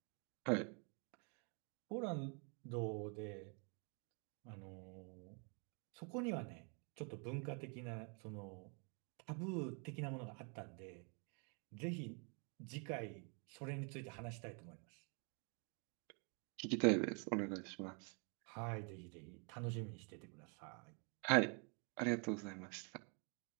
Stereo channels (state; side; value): quieter; left; 37.4 dB